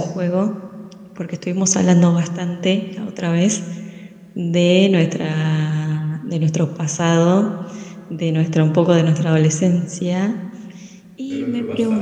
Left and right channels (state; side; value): identical; both; correlation 1.00